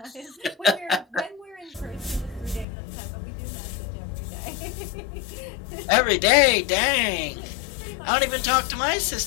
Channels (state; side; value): drops out; right; at 2.7 s